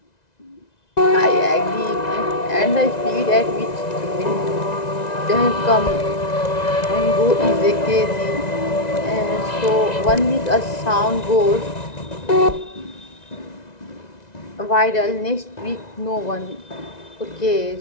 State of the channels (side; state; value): right; late; 1.9 ms